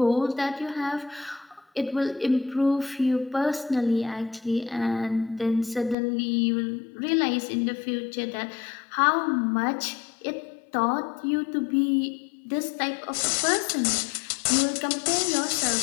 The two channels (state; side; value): drops out; right; at 6.0 s